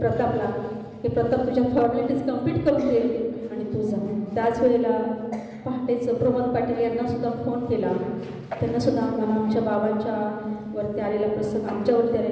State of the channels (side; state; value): both; identical; correlation 1.00